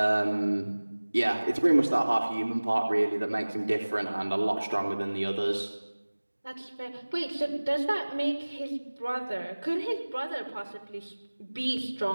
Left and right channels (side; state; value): both; inverted; correlation -1.00